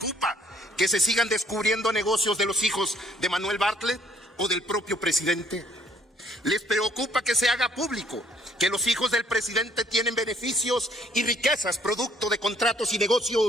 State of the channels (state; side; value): normal; both; correlation 0.64